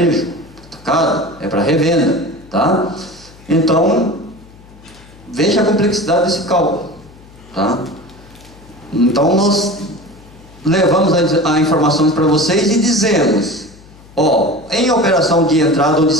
atacado, é para revenda. Tá? Então, veja a complexidade desse cálculo. Tá? Então, nós levamos as informações para vocês e dizemos, ó, em operação de entrada ou de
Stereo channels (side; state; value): left; noise; hum, 23 dB below the sound